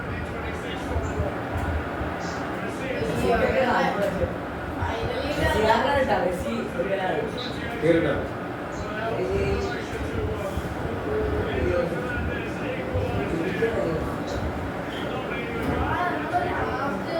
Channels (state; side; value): identical; both; correlation 1.00